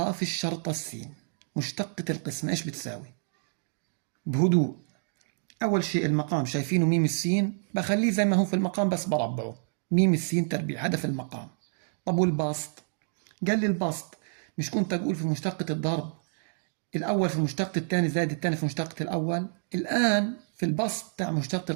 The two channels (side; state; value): left; silent; digital silence